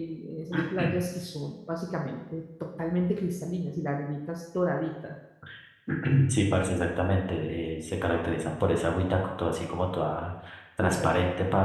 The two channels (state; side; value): identical; both; correlation 1.00